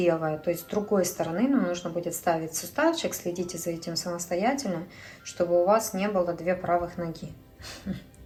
То есть с другой стороны нам нужно будет ставить суставчик. Следите за этим самостоятельно, чтобы у вас не было 2 правых ноги.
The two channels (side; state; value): both; identical; correlation 1.00